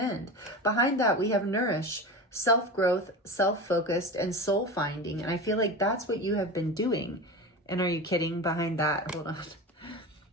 Behind that, we have nourish, self-growth, self-focused, and soul finding. And I feel like that's what you have been doing. And are you kidding? Behind that, hold on.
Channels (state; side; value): normal; both; correlation 0.27